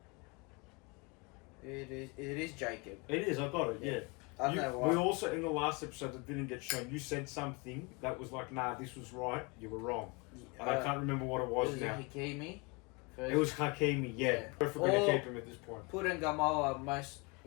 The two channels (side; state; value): right; quieter; 28.6 dB